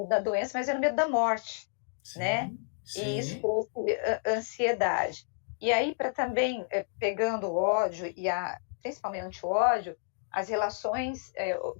da doença, mas era o medo da morte, sim, né? Sim. E isso trouxe ansiedade. E aí, para também, pegando o ódio, principalmente o ódio, as relações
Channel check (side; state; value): right; silent; digital silence